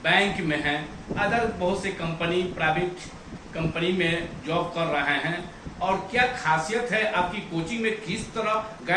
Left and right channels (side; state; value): both; identical; correlation 1.00